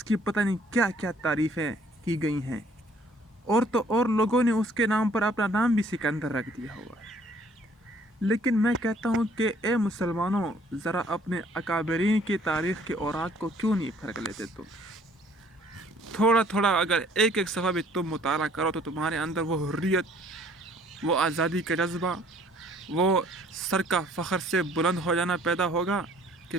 کی پتہ نہیں کیا کیا تعریفیں کی گئی ہیں، اور تو اور لوگوں نے اس کے نام پر اپنا نام بھی سکندر رکھ دیا ہوا ہے۔ لیکن میں کہتا ہوں کہ اے مسلمانوں، ذرا اپنے اکابرین کی تاریخ کے اوراق کو کیوں نہیں پھرک لیتے تم؟ تھوڑا تھوڑا اگر ایک ایک صفحہ بھی تم مطالعہ کرو تو تمہارے اندر وہ حریت، وہ آزادی کا جذبہ، وہ سر کا فخر سے بلند ہو جانا پیدا ہوگا کہ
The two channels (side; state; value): both; normal; correlation 0.59